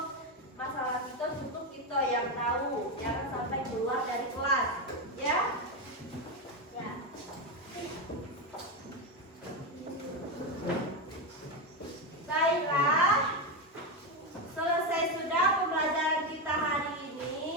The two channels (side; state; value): both; normal; correlation 0.11